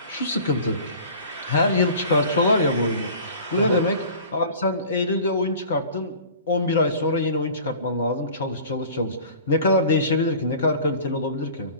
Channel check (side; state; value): both; inverted; correlation -0.43